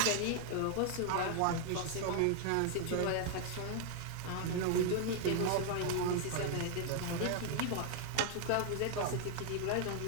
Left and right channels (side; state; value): both; different; correlation 0.00